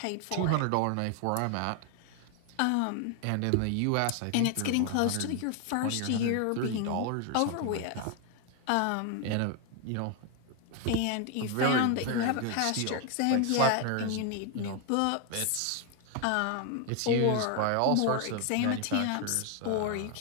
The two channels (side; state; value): both; different; correlation 0.01